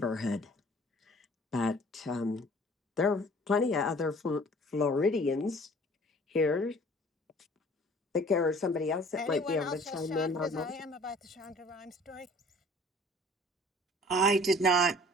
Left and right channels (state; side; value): normal; both; correlation 0.51